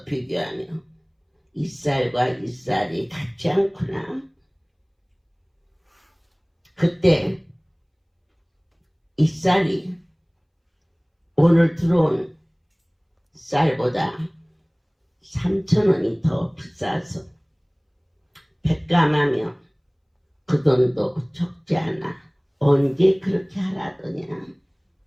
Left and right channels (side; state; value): both; identical; correlation 1.00